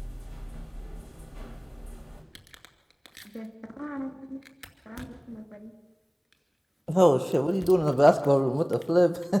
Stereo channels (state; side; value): identical; both; correlation 1.00